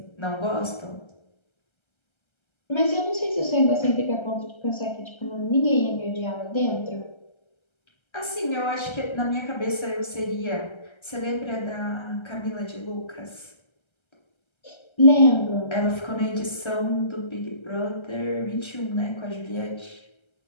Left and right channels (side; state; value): right; late; 1.3 ms